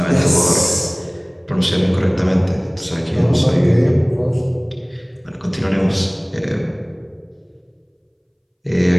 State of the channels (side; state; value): both; identical; correlation 1.00